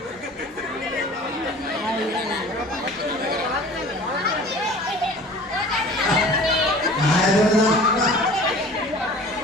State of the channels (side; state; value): both; normal; correlation 0.44